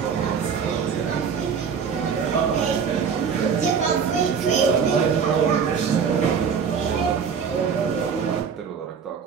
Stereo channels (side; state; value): left; quieter; 6.6 dB